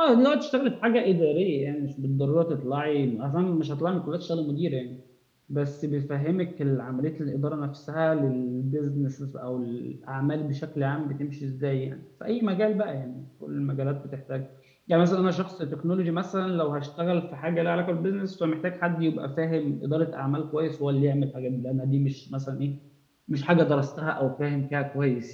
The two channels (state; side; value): identical; both; correlation 1.00